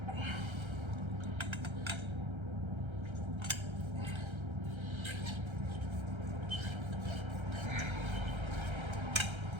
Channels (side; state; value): left; late; 1.3 ms